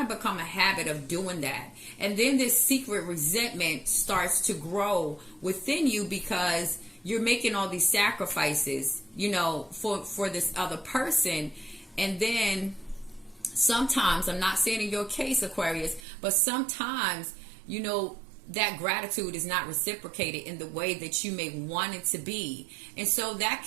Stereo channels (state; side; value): drops out; left; at 16.0 s